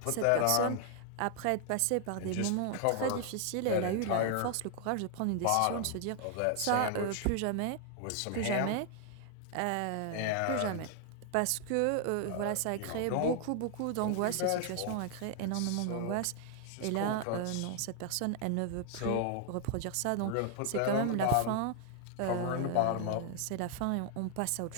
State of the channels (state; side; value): different; both; correlation 0.00